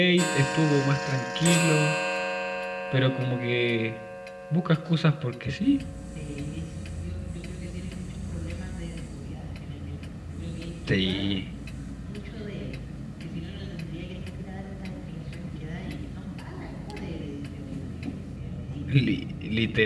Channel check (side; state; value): both; identical; correlation 1.00